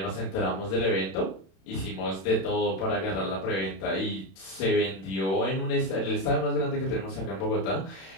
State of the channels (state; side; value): late; right; 31 ms